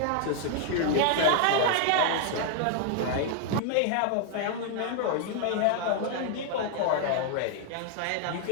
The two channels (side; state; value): both; different; correlation 0.00